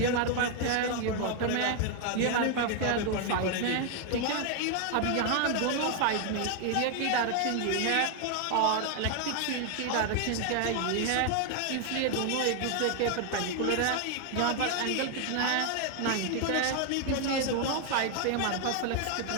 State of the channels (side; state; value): both; different; correlation 0.00